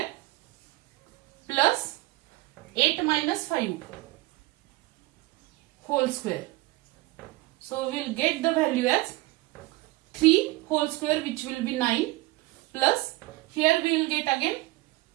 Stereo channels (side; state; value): left; quieter; 19.9 dB